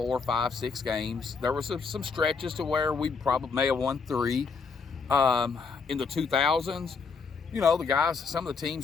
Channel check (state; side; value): quieter; right; 5.1 dB